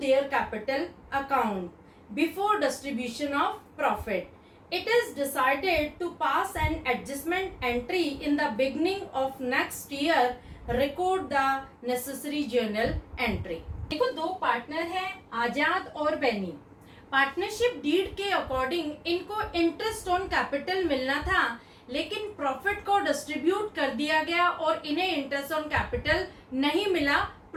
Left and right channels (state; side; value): identical; both; correlation 1.00